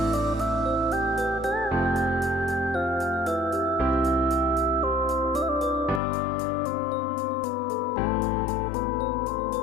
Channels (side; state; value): right; drops out; at 6.0 s